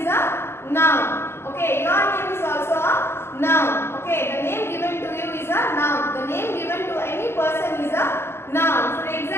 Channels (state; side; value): late; right; 0.12 ms